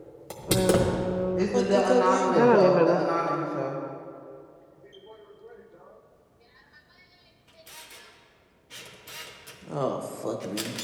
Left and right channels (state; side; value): identical; both; correlation 1.00